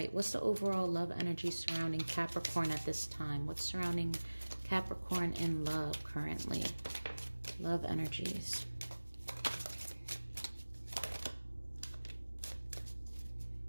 what's the overall love energy surrounding Capricorn at this time? What's surrounding Capricorn in love currently? Love energies.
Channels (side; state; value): both; inverted; correlation -1.00